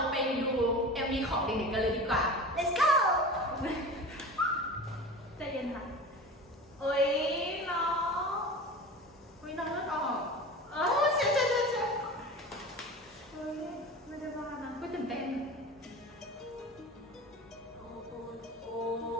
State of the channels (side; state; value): both; normal; correlation 0.33